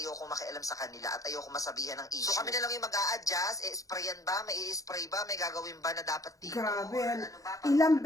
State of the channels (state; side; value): late; right; 0.16 ms